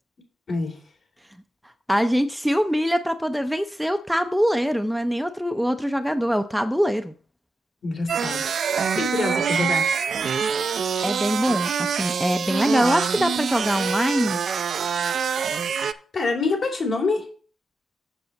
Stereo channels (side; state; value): both; normal; correlation 0.89